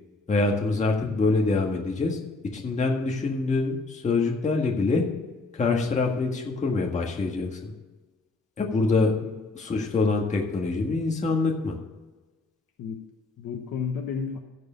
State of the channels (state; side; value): quieter; right; 3.3 dB